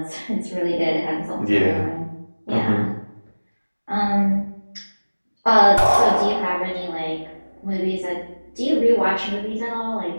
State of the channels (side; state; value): both; inverted; correlation -1.00